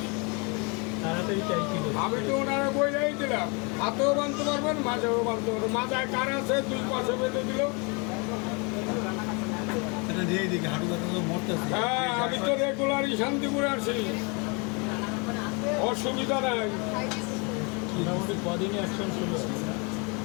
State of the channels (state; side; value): quieter; right; 31.9 dB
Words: তাড়াতাড়ি চাইছিল। আমি তো ওনারা বইলাই দিলাম, হাতেও বানতে পারবেন, মাঝেও বানতে পারবেন। মাজায় কার আছে 2 পাশে বেঁধে দিল। হ্যাঁ, আমি তো রেগুলারই শান্তিপুরে আছি, অসুবিধা নাই। মোটামুটি কদিনই অ্যাকশন ছিল।